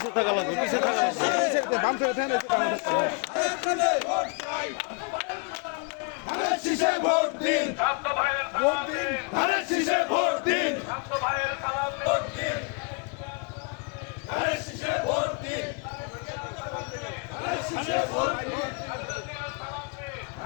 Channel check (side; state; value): right; quieter; 33.8 dB